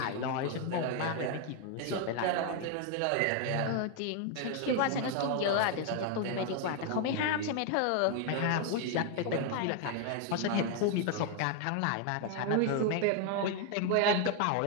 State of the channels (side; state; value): both; different; correlation 0.00